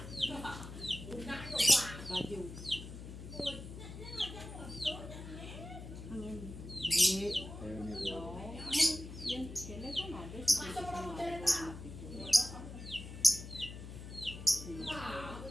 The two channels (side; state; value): left; noise; hum, 11 dB below the sound